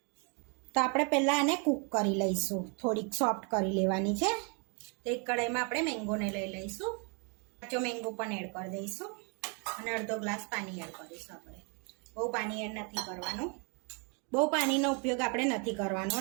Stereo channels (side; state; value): left; quieter; 35.7 dB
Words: તો આપણે પહેલાં આને કૂક કરી લઈશું, થોડીક સોફ્ટ કરી લેવાની છે. તો એક કઢાઈમાં આપણે મેંગોને લઈ લઈશું, કાચો મેંગો પણ એડ કરી દઈશું અને અડધો ગ્લાસ પાણી એડ કરીશું. આપણે બહુ પાણી એડ નથી કરવાનું, બહુ પાણીનો ઉપયોગ આપણે નથી કરવાનો,